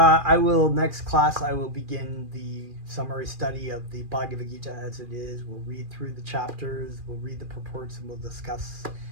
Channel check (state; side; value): late; left; 2.4 ms